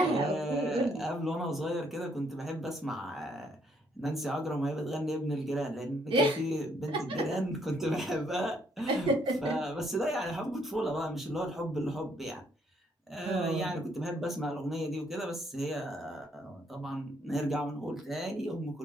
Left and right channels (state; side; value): normal; both; correlation 0.69